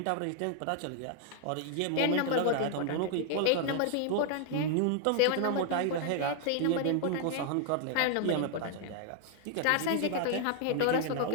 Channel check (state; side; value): different; both; correlation 0.00